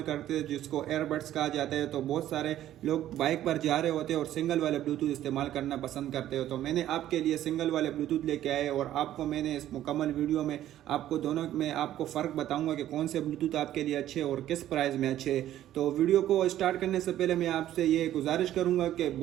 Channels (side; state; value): left; quieter; 12.6 dB